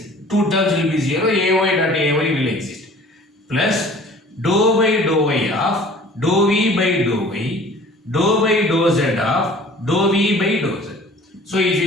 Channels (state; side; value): normal; both; correlation 0.48